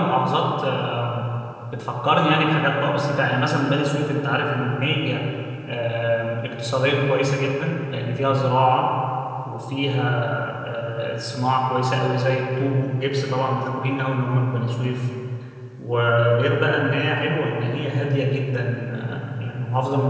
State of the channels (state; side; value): identical; both; correlation 1.00